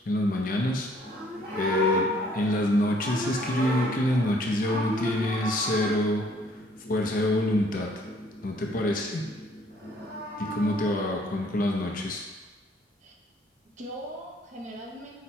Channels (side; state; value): both; normal; correlation 0.61